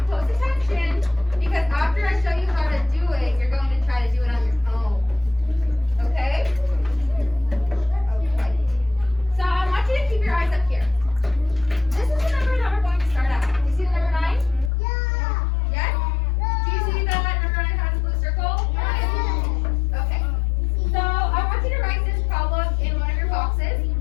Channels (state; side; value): drops out; right; at 14.7 s